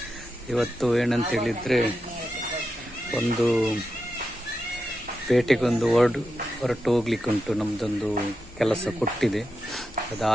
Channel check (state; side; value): normal; both; correlation 0.88